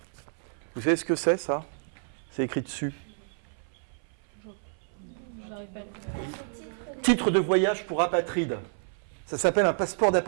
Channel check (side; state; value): left; silent; 58 dB below the other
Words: Vous savez ce que c'est, ça ? C'est écrit dessus. Titre de voyage pour apatride. Ça s'appelle un passeport